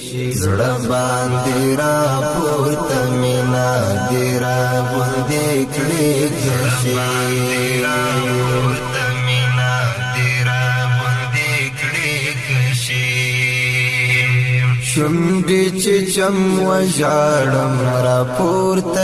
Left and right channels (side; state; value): right; noise; rumble, 25 dB below the sound